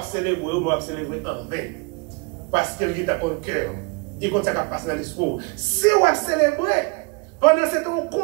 célébrer en vain. Parce qu'il est dans le cœur. Il compte ça qui passe dans l'esprit. Si on va célébrer, pendant ce temps, on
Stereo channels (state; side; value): quieter; left; 29.6 dB